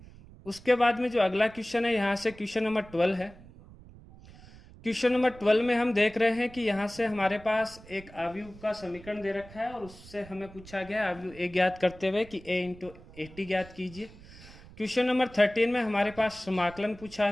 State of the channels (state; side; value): noise; right; rumble, 20 dB below the sound